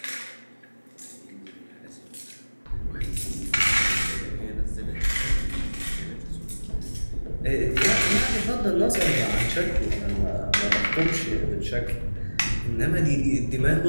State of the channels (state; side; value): inverted; both; correlation -1.00